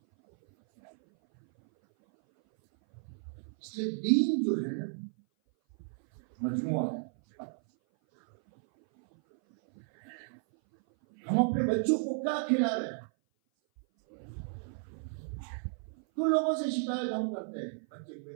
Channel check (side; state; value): left; silent; 56 dB below the other